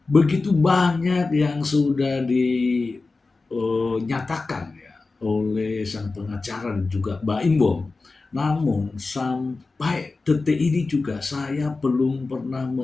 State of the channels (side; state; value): right; quieter; 3.8 dB